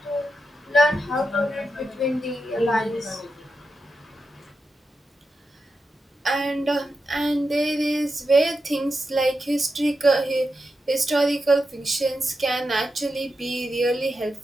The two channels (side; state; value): both; normal; correlation 0.88